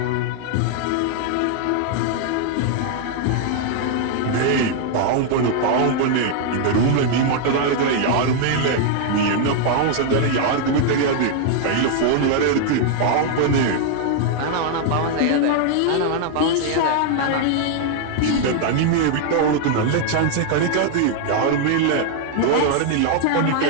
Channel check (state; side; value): different; both; correlation 0.00